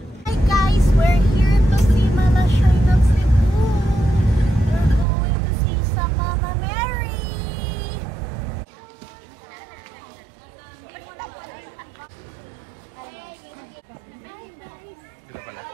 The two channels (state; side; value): drops out; left; at 5.1 s